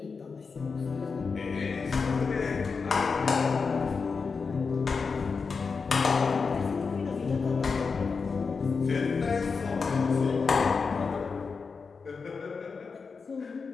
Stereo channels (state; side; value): quieter; right; 5.0 dB